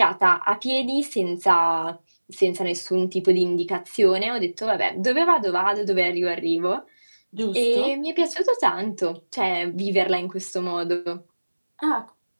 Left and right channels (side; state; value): both; inverted; correlation -1.00